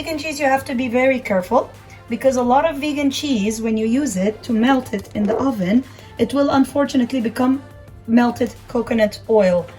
cheese, you have to be very careful because a lot of vegan cheese, when you use it to melt it in the oven, it will unfortunately become melted coconut oil,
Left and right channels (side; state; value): both; identical; correlation 1.00